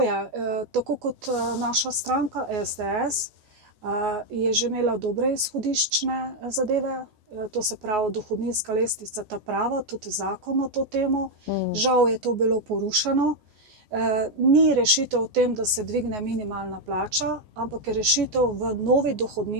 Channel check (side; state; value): left; late; 14 ms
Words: je. Tako kot naša stranka SDS je že imela dobre izhodiščne zadeve, to se pravi dohodninska lestvica ta prava, tudi zakon o to temo. Žal je to bilo porušeno. Ni rešitev v tem, da se dvigne minimalna plača, ampak je rešitev v novi